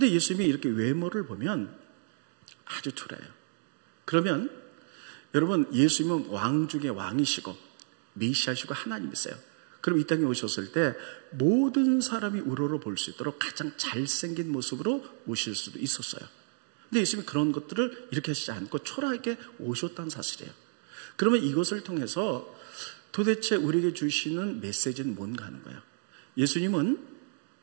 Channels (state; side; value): silent; left; 57 dB below the other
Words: 예수님이 이렇게 외모를 보면 아주 초라해요. 그러면 여러분 예수님은 왕 중에 왕이시고 메시아시고 하나님이세요. 그럼 이 땅에 오셨을 때 모든 사람이 우러러 볼 수 있도록 가장 잘생긴 모습으로 오실 수도 있었어요. 근데 예수님이 그런 것들을 이렇게 하시지 않고 초라하게 오셨다는 사실이에요. 그러면 이것을 통해서 도대체 우리에게 주시는 메시지는 뭔가 하는 거예요. 예수님은